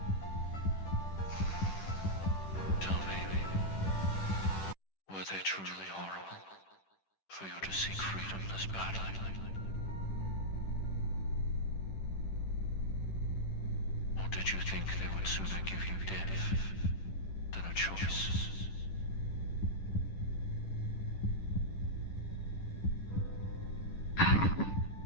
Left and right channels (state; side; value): late; right; 10 ms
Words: Tell me, were they truly horrible for you to seek freedom this badly? Or did you think they would sooner give you death than a choice?